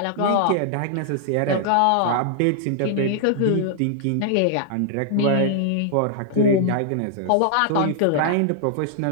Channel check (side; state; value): both; different; correlation -0.01